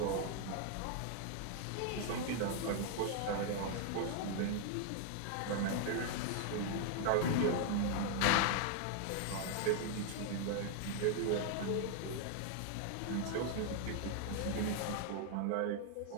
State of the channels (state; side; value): different; both; correlation 0.00